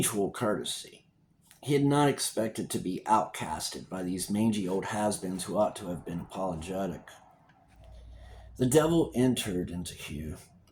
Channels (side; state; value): both; identical; correlation 1.00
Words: courtesy. He had not expected to be outcasted by these mangy old has-beens who ought to have been apologetic. The devil entered into Hugh,